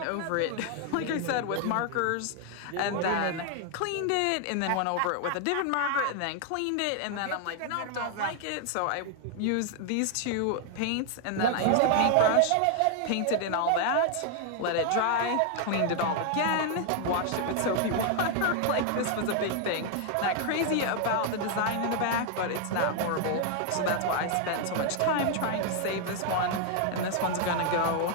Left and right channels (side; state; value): both; different; correlation 0.00